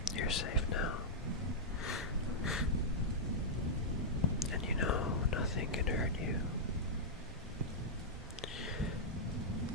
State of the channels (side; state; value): both; normal; correlation -0.09